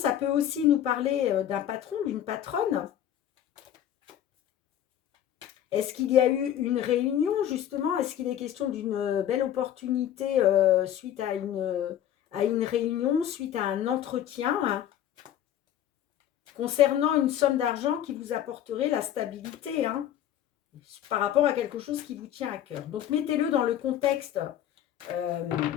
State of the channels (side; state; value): right; quieter; 11.0 dB